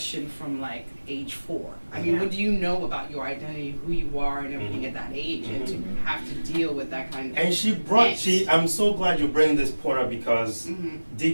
from like age 4. I mean, what do you know about your identity, who you are, and everything at that age, and to have to deal with that kind of. And I'm so glad you bring this point up because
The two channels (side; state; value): both; inverted; correlation -1.00